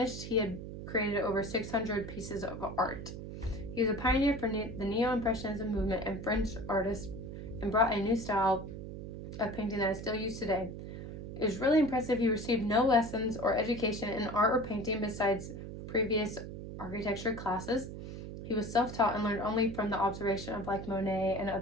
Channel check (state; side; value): noise; right; hum, 9 dB below the sound